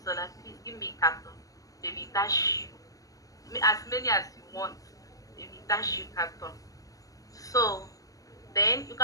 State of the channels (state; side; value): late; right; 0.17 ms